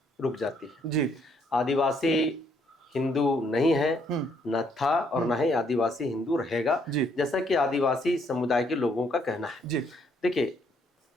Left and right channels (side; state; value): both; normal; correlation 0.69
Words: रुक जाती है। जी आदिवासी हिंदू नहीं है, न था और न ही आदिवासी हिंदू रहेगा, जैसा कि आदिवासी समुदाय के लोगों का कहना है। जी देखिए,